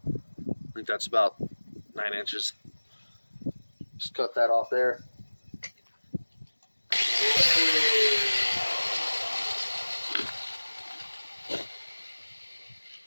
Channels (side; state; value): both; inverted; correlation -1.00